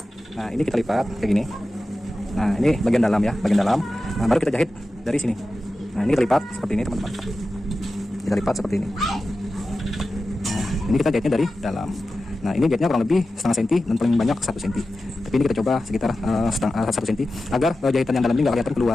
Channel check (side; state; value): both; normal; correlation 0.93